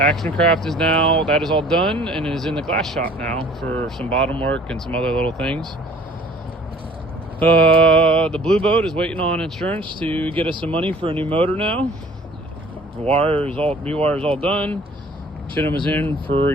Craft is now, that is all done and is in the glass shop now for some bottom work and some other little things. The blue boat is waiting on insurance to get us some money for a new motor now. Rewire is all done. Chinham was in for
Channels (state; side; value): normal; both; correlation 0.52